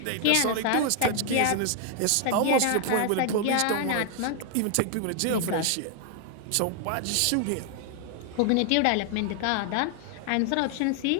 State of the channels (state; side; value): different; both; correlation 0.00